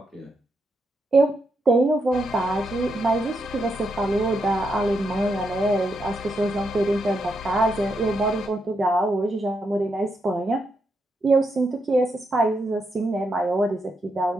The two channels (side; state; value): both; normal; correlation 0.81